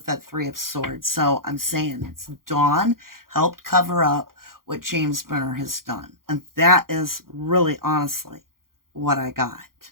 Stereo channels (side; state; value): left; late; 0.92 ms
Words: that Three of Swords. So I'm saying it's Dawn helped cover up what James Brenner has done. And that is really, honestly, what I got.